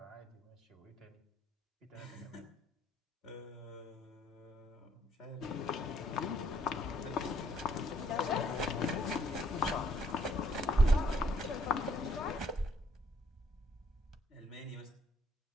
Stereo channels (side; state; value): both; normal; correlation 0.67